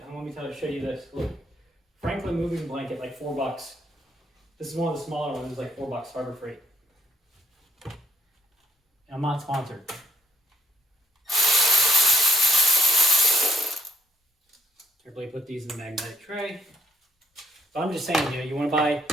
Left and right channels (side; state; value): both; normal; correlation 0.68